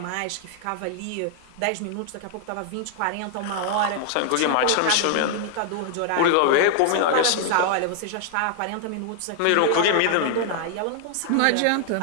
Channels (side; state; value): both; different; correlation 0.00